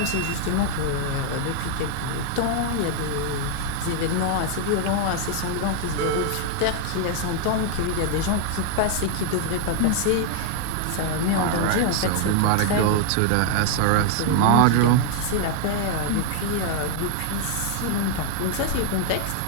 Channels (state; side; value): different; both; correlation 0.00